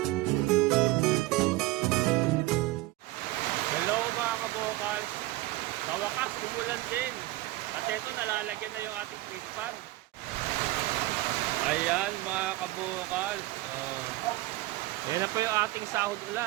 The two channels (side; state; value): left; quieter; 18.3 dB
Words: Hello mga kabokals. Sa wakas, umulan din. At ito, nalalagyan na yung ating fish pan. Ayan mga kabokals. Ayan na po yung ating sahod